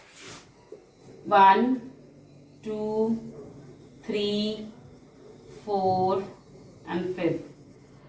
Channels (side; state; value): both; identical; correlation 1.00